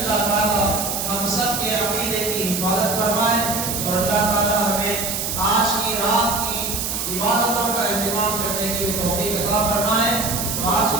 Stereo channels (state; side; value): noise; right; hiss, 2 dB below the sound